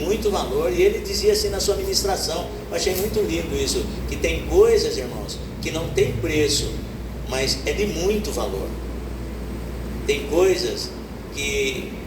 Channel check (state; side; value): identical; both; correlation 1.00